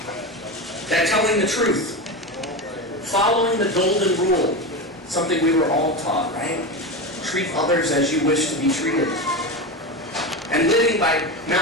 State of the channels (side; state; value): both; normal; correlation 0.20